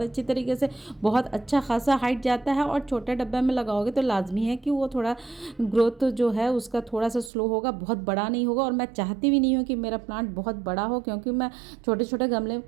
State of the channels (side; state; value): left; drops out; at 7.3 s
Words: अच्छी तरीके से बहुत अच्छा खासा हाइट जाता है, और छोटे डब्बे में लगाओगे तो लाजमी है कि वो थोड़ा ग्रोथ जो है उसका थोड़ा सा स्लो होगा, बहुत बड़ा नहीं होगा। और मैं चाहती भी नहीं हूँ कि मेरा प्लांट बहुत बड़ा हो, क्योंकि मैं छोटे छोटे गमले